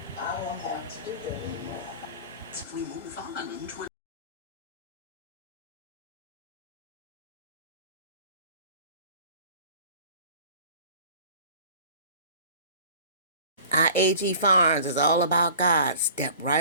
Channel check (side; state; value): both; inverted; correlation -0.45